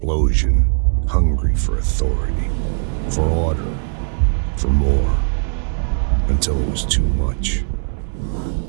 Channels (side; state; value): left; silent; 64 dB below the other